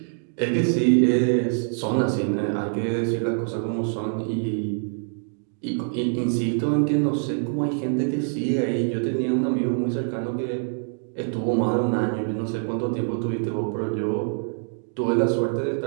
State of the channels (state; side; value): silent; left; digital silence